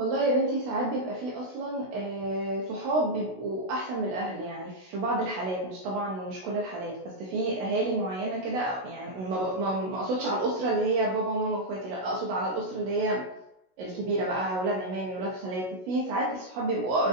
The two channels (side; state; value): left; late; 16 ms